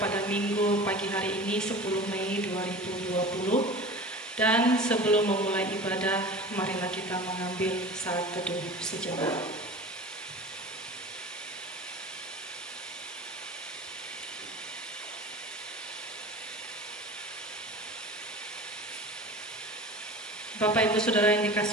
pada Minggu pagi hari ini 10 Mei 2020. Dan sebelum memulai ibadah, marilah kita mengambil saat teduh sejenak. Bapak Ibu Saudara yang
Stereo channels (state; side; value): normal; both; correlation 0.37